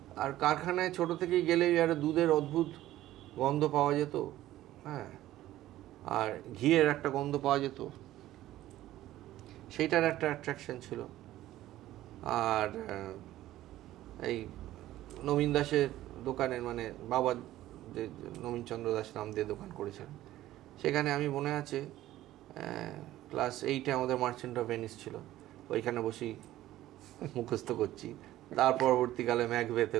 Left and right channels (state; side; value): quieter; left; 14.6 dB